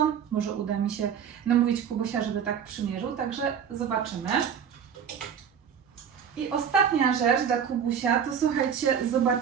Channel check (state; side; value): quieter; left; 7.9 dB